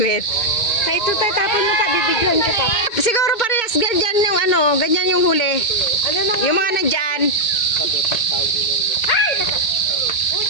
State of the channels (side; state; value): right; late; 2.1 ms